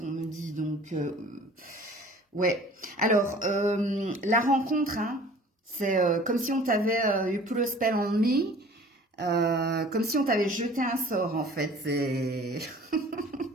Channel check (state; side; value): normal; both; correlation 0.48